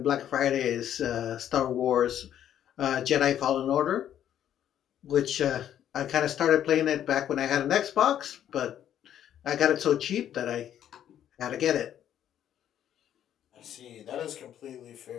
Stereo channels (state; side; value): quieter; right; 10.5 dB